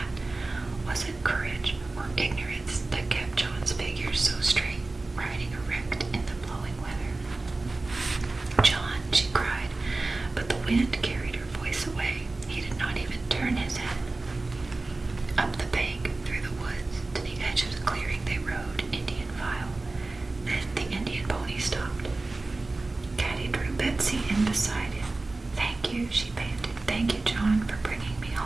Was it courage or ignorance that kept John's figure so straight, riding erect in the blowing weather? John, she cried, but the wind carried her voice away. He did not even turn his head. Up the bank, through the woods, to the edge of the clearing they rode, Indian file. Then the Indian pony stopped. Caddie drew Betsy in beside him. "Thank you," she panted. "Thank you, John, for bringing me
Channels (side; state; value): left; quieter; 3.2 dB